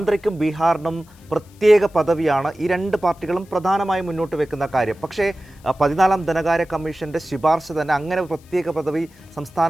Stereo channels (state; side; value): noise; left; hiss, 29 dB below the sound